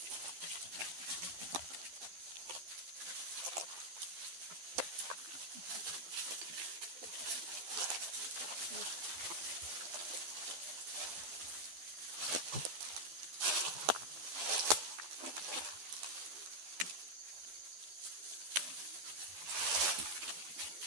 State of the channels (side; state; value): left; late; 12 ms